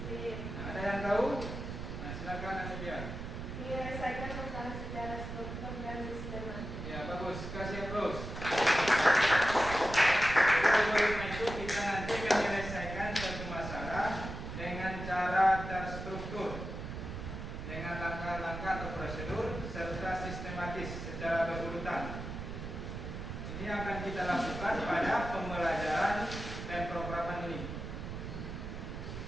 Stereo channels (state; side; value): noise; right; rumble, 7 dB below the sound